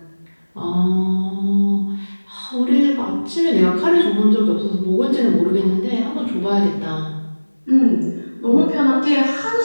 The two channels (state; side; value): inverted; both; correlation -1.00